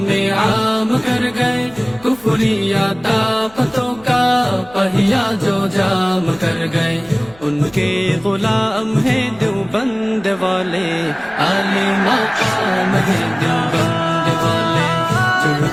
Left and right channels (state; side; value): noise; left; rumble, 26 dB below the sound